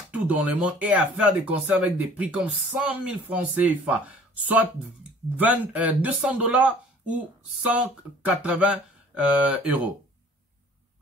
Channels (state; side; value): normal; both; correlation 0.52